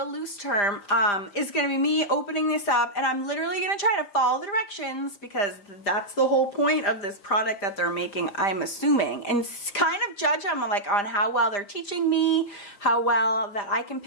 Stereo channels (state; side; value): late; right; 5.0 ms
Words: loose term, is going to be me opening this up, and I'm literally going to try to follow the directions because that's the whole point of this product that they're making, I'm assuming, and kind of judge them like on how well they're teaching me, how well that I can